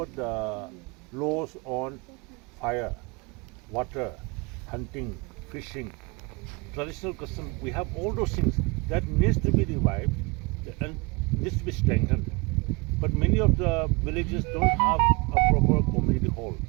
laws on fire, water, hunting, fishing, traditional custom. We have all those things that needs to be revived and needs to be strengthened. But many of the villages don't have a proper community hall.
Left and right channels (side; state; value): left; quieter; 27.4 dB